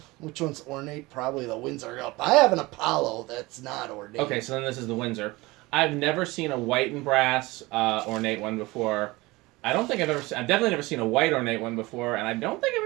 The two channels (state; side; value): quieter; left; 21.7 dB